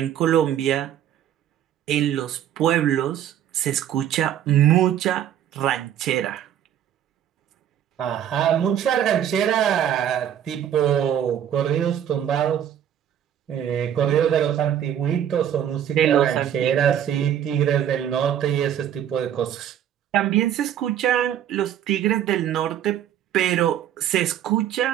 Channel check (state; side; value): quieter; left; 10.2 dB